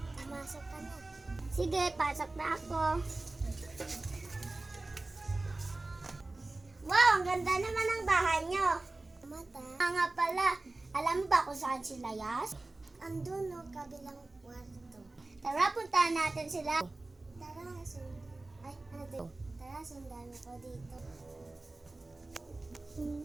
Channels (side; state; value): left; quieter; 3.0 dB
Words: pumasok ka na. Sige, pasok na ako. Wow, ang ganda naman ng bahay nyo. Mata. Nga pala, alam mo ba kung saan sila, Yas? Andun no, kabilang kwarto. Tara, puntahan natin sila. Tara, sundan ako dito.